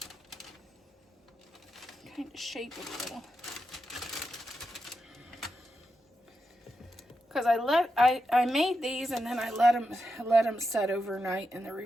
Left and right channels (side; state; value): both; normal; correlation 0.87